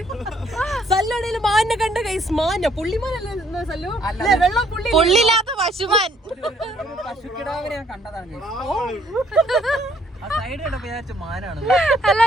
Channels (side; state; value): both; normal; correlation 0.65